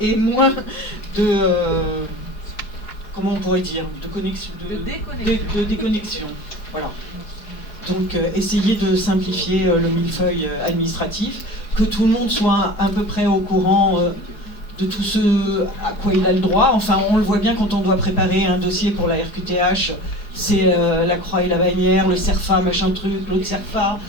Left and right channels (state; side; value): late; right; 4.9 ms